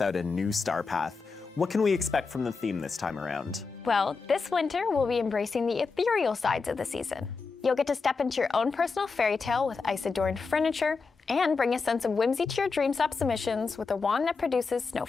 a new star path. What can we expect from the theme this time around? Well, this winter we'll be embracing the ethereal sides of the season. You'll get to step into your own personal fairy tale with ice-adorned furniture and bring a sense of whimsy to your Dreamstop submissions with a wand that produces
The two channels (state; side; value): quieter; right; 4.7 dB